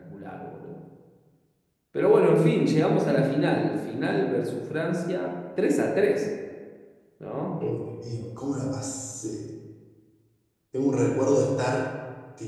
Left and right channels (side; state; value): both; identical; correlation 1.00